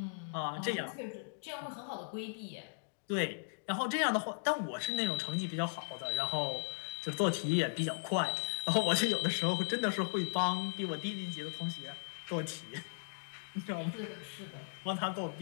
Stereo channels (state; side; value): silent; right; digital silence